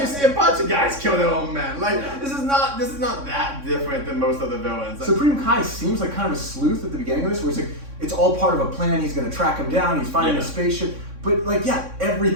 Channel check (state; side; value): late; left; 3.6 ms